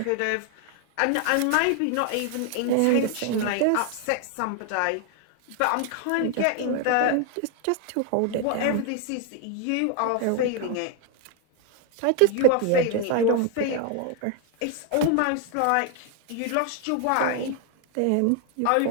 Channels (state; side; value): different; both; correlation 0.00